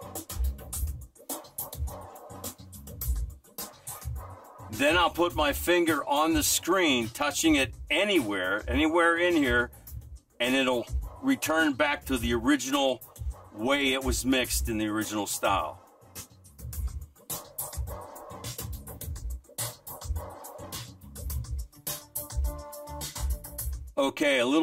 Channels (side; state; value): both; identical; correlation 1.00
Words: then I'll put my finger on the screen, touching it anywhere in here, and it'll return back to the original way it was mixed in the original style. Okay, a